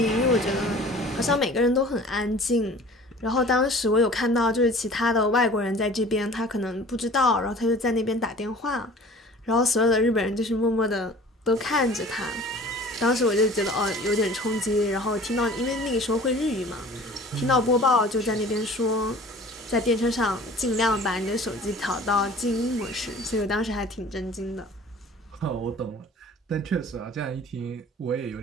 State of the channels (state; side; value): normal; both; correlation 0.46